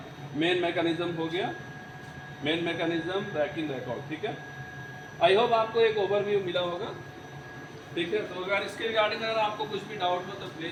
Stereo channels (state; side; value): identical; both; correlation 1.00